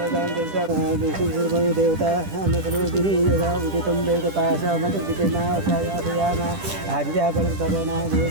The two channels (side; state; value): left; late; 10 ms